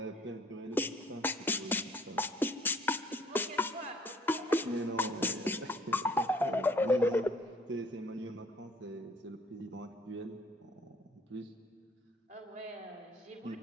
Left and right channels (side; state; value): both; normal; correlation 0.56